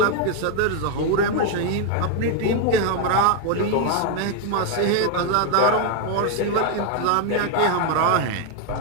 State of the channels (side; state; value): both; different; correlation 0.01